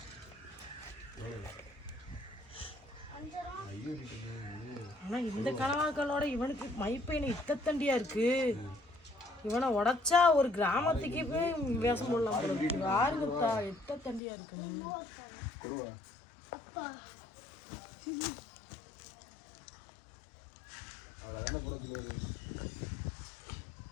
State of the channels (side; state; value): right; drops out; at 14.2 s